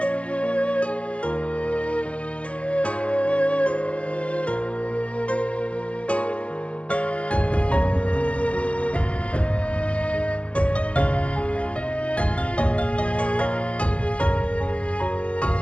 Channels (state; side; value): late; right; 0.059 ms